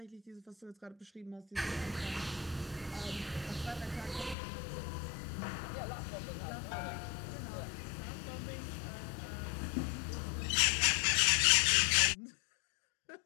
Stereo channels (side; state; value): right; drops out; at 4.4 s